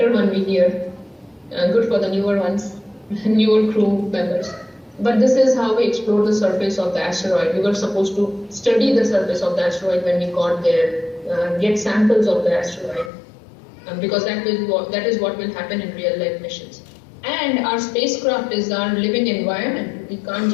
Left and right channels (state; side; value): drops out; right; at 13.1 s